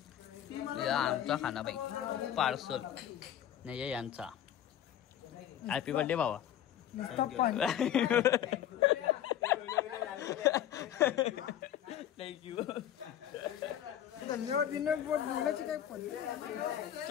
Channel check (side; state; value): right; quieter; 11.0 dB